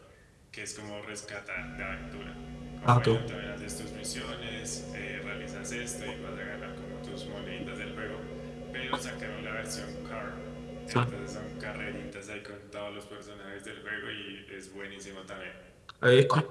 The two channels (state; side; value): identical; both; correlation 1.00